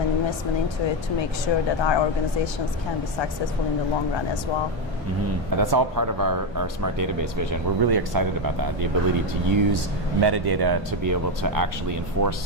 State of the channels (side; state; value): both; normal; correlation 0.09